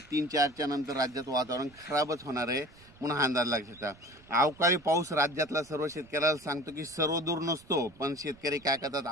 3-4च्या नंतर राज्यात वातावरण खराबच होणार आहे, म्हणून हा अंदाज लक्षात. अवकाळी पाऊस राज्यातला सर्व शेतकऱ्याला सांगतो की सर्वदूर नसतो, पण शेतकरी काय करतात,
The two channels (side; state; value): right; noise; rumble, 25 dB below the sound